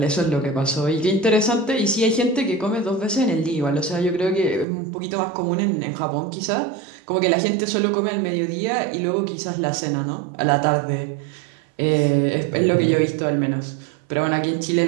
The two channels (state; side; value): drops out; left; at 4.7 s